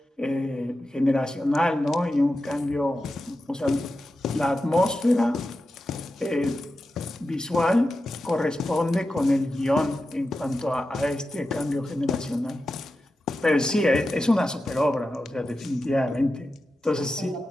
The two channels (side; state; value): both; normal; correlation 0.91